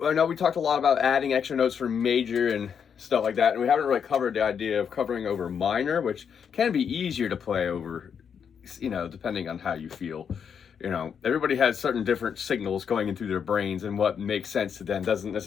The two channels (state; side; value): quieter; right; 7.3 dB